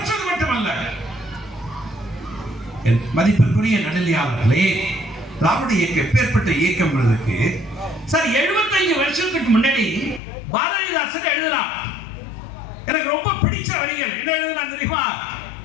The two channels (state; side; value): drops out; right; at 10.2 s